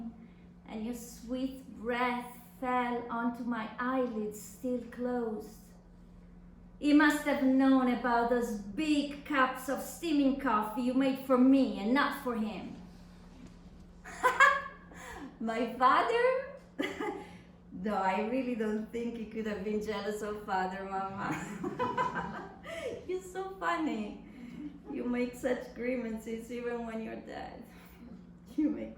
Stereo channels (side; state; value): both; identical; correlation 1.00